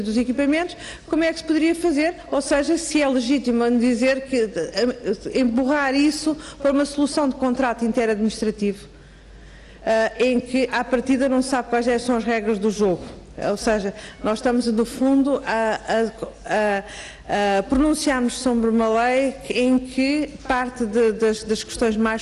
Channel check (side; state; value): both; identical; correlation 1.00